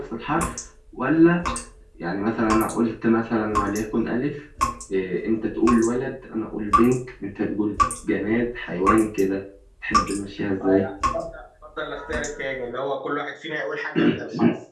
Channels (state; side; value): identical; both; correlation 1.00